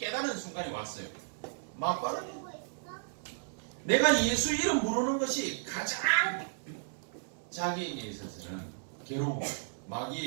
순간이 왔어요. 막바로 내가 예수 이름 부르는 것이 가장 자기에게 있어서는 괴로워.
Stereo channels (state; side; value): silent; left; digital silence